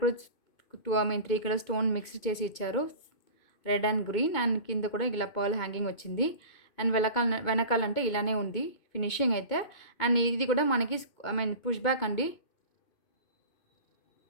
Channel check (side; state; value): right; late; 2.2 ms